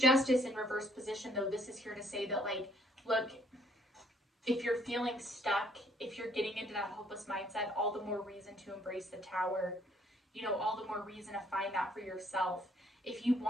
Justice in reverse position, though, this is here to say that, like, look, if you're feeling stuck, if you're getting into that hopeless mindset, all the more reason to embrace the Tower. You know, all the more reason to find that for yourself. If you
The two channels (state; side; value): normal; both; correlation 0.64